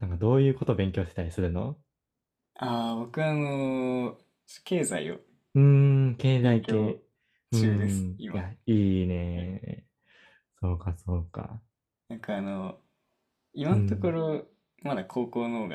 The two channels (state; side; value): identical; both; correlation 1.00